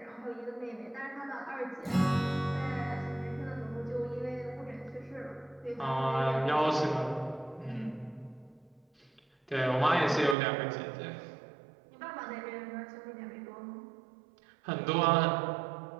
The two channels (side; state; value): left; drops out; at 10.4 s